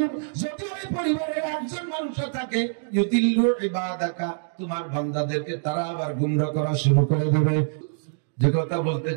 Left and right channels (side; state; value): left; silent; digital silence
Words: যদি ওই পরিবারের একজন মানুষও থাকে, ইউদিল্লু ইবাদাকা, তোমার বান্দাদেরকে তারা আবার গুমরাহ করা শুরু করে দেবে। যে কথা বলতে